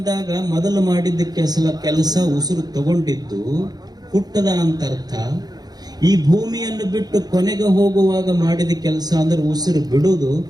ಮೊದಲು ಮಾಡಿದ್ದ ಕೆಲಸ ಉಸಿರು ತಗೊಂಡಿದ್ದು ಹುಟ್ಟದ ಅಂತ ಅರ್ಥ. ಈ ಭೂಮಿಯನ್ನು ಬಿಟ್ಟು ಕೊನೆಗೆ ಹೋಗುವಾಗ ಮಾಡಿದ ಕೆಲಸ ಅಂದ್ರೆ ಉಸಿರು ಬಿಡುವುದು.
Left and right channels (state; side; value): late; left; 0.19 ms